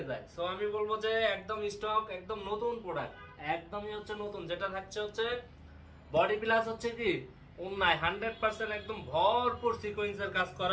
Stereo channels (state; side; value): identical; both; correlation 1.00